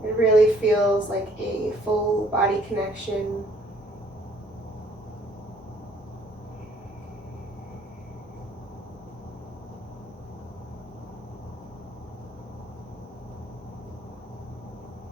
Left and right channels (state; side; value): normal; both; correlation 0.61